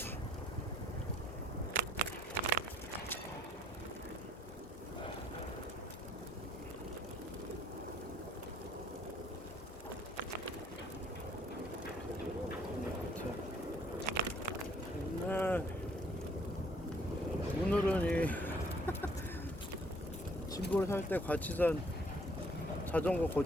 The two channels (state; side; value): normal; both; correlation 0.62